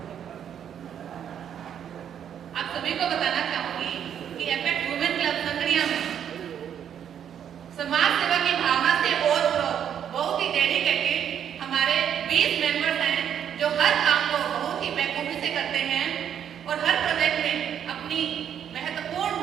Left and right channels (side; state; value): left; quieter; 9.0 dB